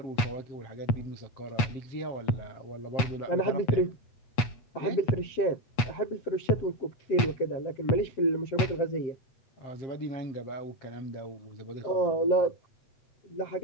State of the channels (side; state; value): right; late; 8.2 ms